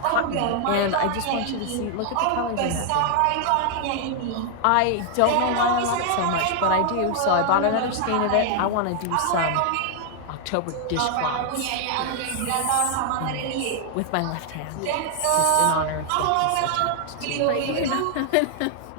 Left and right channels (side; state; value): both; different; correlation 0.00